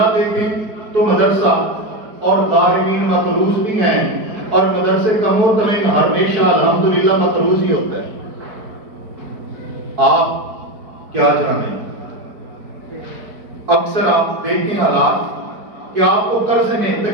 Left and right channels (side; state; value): left; late; 4.7 ms